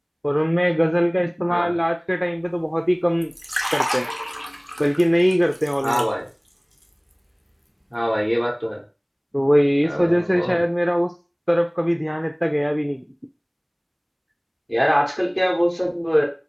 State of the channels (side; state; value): both; identical; correlation 1.00